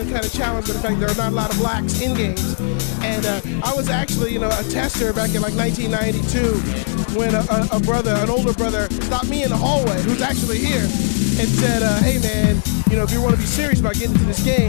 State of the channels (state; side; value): silent; right; digital silence